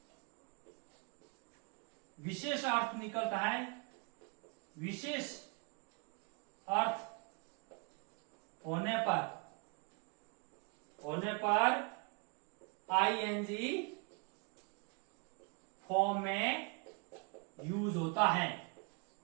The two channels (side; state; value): left; quieter; 33.8 dB